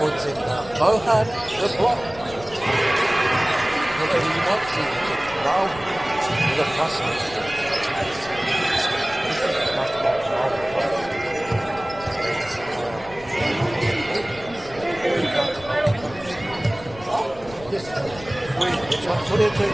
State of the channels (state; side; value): noise; left; rumble, 18 dB below the sound